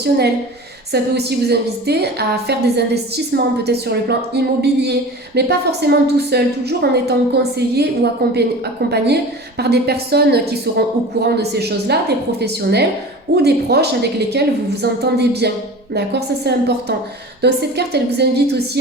Ça peut aussi vous inviter à faire des investissements, peut-être sur le plan immobilier, mais pas forcément tout seul, toujours en étant conseillé ou accompagné par des personnes qui seront au courant de ces choses-là, des professionnels ou des proches avec lesquels vous vous entendez bien. D'accord, ça c'est important. Donc cette carte, elle vous invite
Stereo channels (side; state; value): both; normal; correlation 0.36